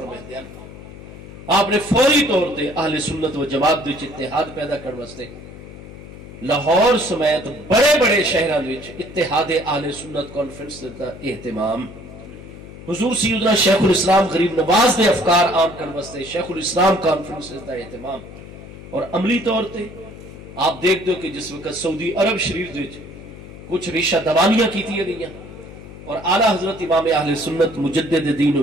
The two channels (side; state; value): left; noise; hum, 15 dB below the sound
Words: ہیں، آپ نے فوری طور تے اہل سنت و جماعت دے اتحاد پیدا کرنے واسطے لاہور سمیت بڑے بڑے شہراں وچ اتحاد اہل سنت کانفرنس دا اہتمام، حضور سیدنا شیخ الاسلام غریب نواز دے افکار عام کرنے واسطے شیخ الاسلام کانفرنس دا اہتمام، اور عملی طور تے آپ دیکھ دو کہ جس وقت سعودی عرب شریف وچ کچھ ریشہ دوانیاں کیتیاں گئیاں اور اعلیٰ حضرت امام اہل سنت مجدد دین و